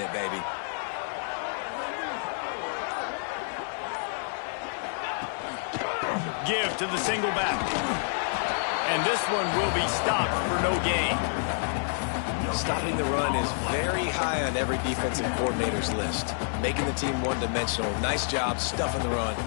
baby. Give to the single back. And this one will be stopped for no gain. Stopping the run is very high on every defensive coordinator's list. Making the team one-dimensional. Nice job stuffing the run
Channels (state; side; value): silent; right; digital silence